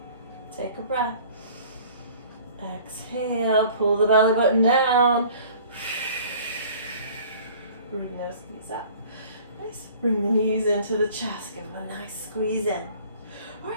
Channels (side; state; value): both; inverted; correlation -0.50